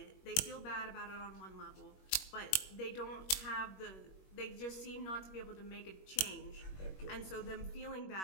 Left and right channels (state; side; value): late; right; 21 ms